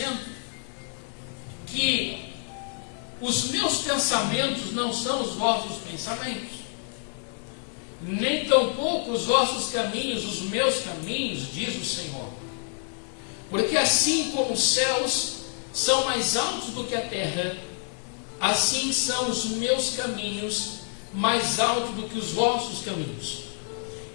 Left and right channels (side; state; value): right; silent; 56 dB below the other